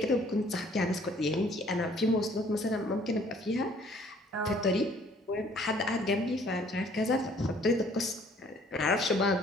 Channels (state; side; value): normal; both; correlation 0.58